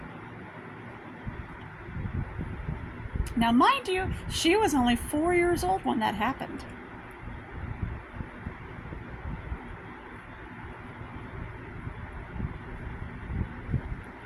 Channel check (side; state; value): both; identical; correlation 1.00